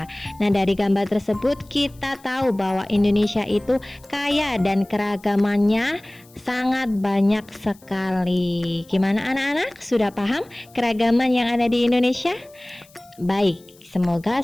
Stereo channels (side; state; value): left; noise; hiss, 28 dB below the sound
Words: Nah, dari gambar tersebut kita tahu bahwa Indonesia itu kaya dan keragamannya sangat banyak sekali. Gimana anak-anak? Sudah paham keragaman yang ada di Indonesia? Baik, semoga